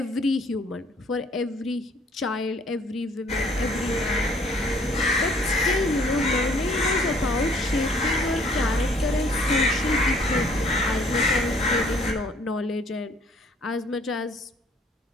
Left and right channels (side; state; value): both; normal; correlation 0.59